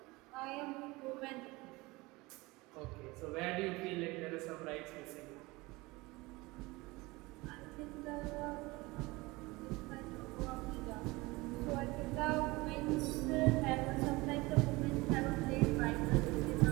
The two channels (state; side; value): quieter; left; 22.5 dB